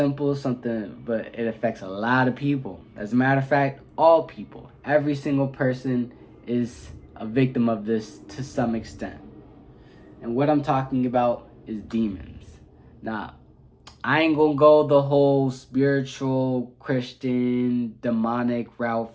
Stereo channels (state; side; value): identical; both; correlation 1.00